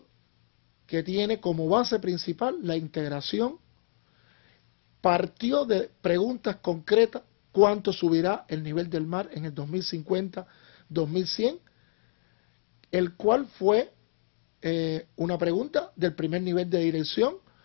que tiene como base principal la integración. Partió de preguntas concretas: ¿cuánto subirá el nivel del mar en el 2050-2100? El cual fue una pregunta del primer nivel de dirección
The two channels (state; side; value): silent; right; digital silence